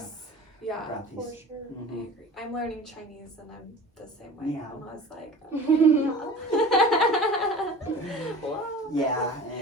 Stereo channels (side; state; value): both; normal; correlation 0.39